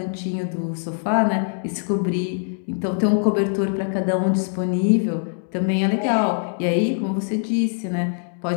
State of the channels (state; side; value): silent; right; digital silence